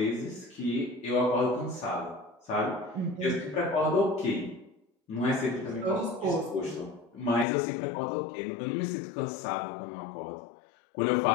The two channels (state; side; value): drops out; right; at 7.5 s